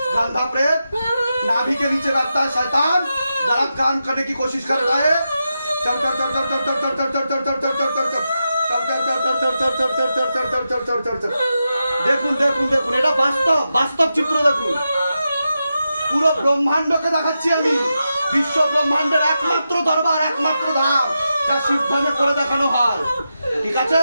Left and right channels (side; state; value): both; inverted; correlation -0.89